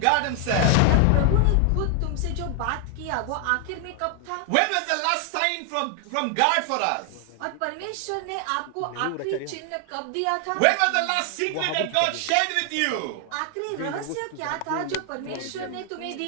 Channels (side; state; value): both; different; correlation 0.00